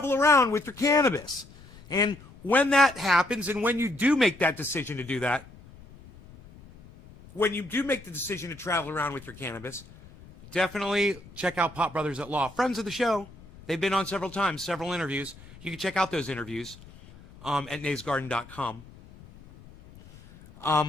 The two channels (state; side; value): noise; left; rumble, 21 dB below the sound